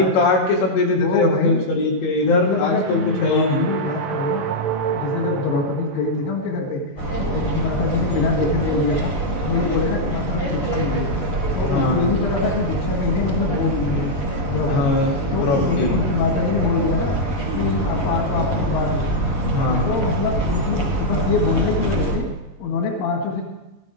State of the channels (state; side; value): late; right; 21 ms